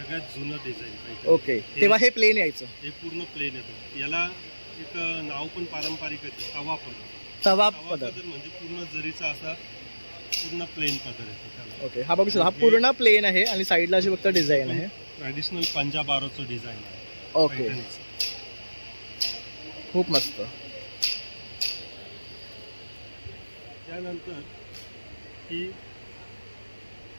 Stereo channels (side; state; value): both; inverted; correlation -1.00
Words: जुनं डिझाईन पैठणी. ओके, तेव्हा हे प्लेन यायचं. हे पूर्ण प्लेन येतं. याला एक नाव पण पारंपरिक आहे, तवा पदर. तवा तवा पदर. पदर म्हणजे पूर्ण जरीचा असा पूर्ण प्लेन पदर येतो त्याला. ओके, हा बघू शकता, हा पूर्ण प्लेन आहे आणि साईडला अशी फक्त डिझाईन आहे. ट्रॅडिशनल पंजाब आरोचं डिझाईन आहे ओके, पैठणीचं. खूप मस्त. त्यानंतर ही